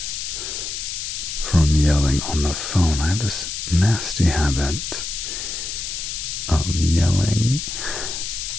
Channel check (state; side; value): noise; left; hiss, 5 dB below the sound